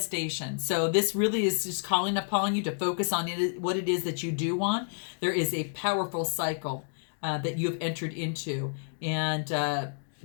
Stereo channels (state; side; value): silent; right; digital silence